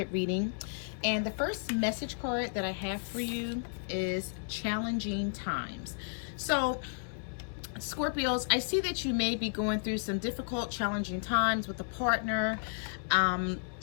reading, and the first message card that I have for you is challenging times. So Scorpios, I see that you may be going through some difficult, challenging times with a partner.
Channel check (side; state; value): right; silent; digital silence